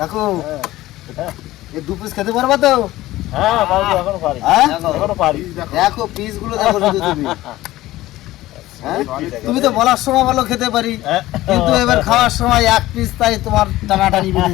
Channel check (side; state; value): right; quieter; 16.5 dB